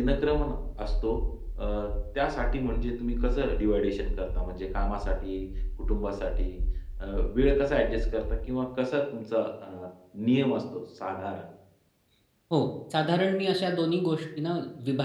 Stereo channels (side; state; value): both; identical; correlation 1.00